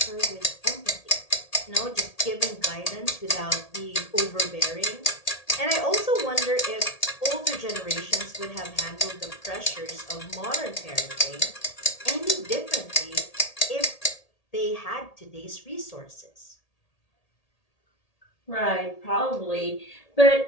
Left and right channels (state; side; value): late; right; 1.8 ms